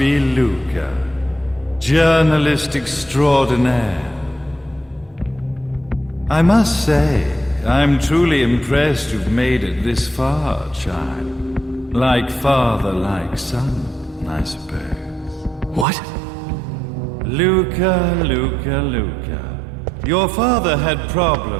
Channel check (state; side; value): drops out; left; at 15.9 s